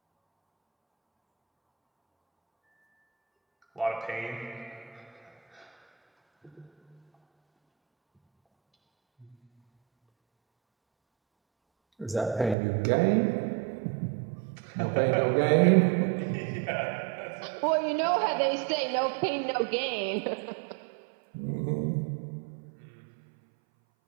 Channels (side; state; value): left; drops out; at 12.6 s